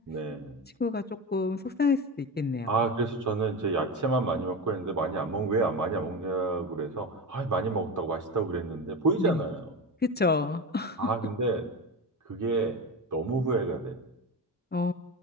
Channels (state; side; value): normal; both; correlation 0.22